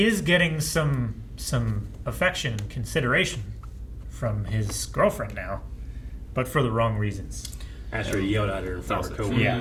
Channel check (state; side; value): identical; both; correlation 1.00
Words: is getting some affection and consideration from his girlfriend now, but for the wrong reasons. After he yelled at her in front of her